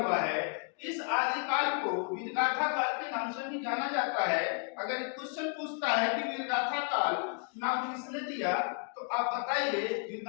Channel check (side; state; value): right; quieter; 37.7 dB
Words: है। इस आदिकाल को वीरगाथा काल के नाम से भी जाना जाता है। अगर क्वेश्चन पूछता है कि वीरगाथा काल नाम किसने दिया, तो आप बताइए